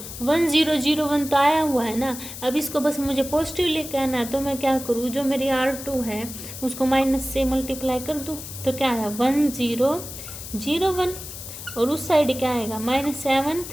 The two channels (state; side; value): noise; left; hiss, 11 dB below the sound